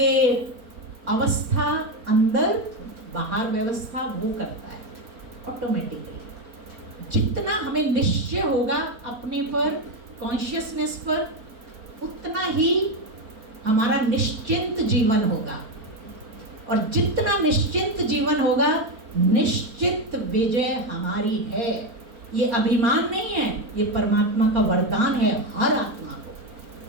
अवस्था अंदर, बाहर व्यवस्था वो करता है ऑटोमेटिकली। जितना हमें निश्चय होगा अपने पर, कॉन्शियसनेस पर, उतना ही हमारा निश्चिंत जीवन होगा। और जितना निश्चिंत जीवन होगा, निश्चित विजय हमारी है। ये अभिमान नहीं है, ये परमात्मा का वरदान है हर आत्मा को।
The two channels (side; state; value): left; late; 4.4 ms